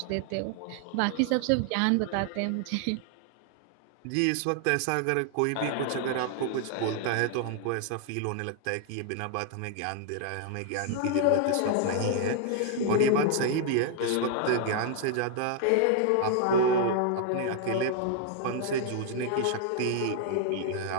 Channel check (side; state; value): both; different; correlation 0.00